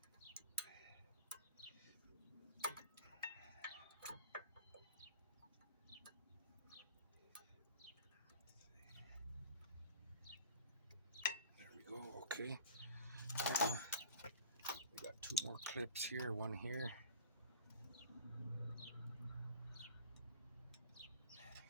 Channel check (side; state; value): both; inverted; correlation -0.43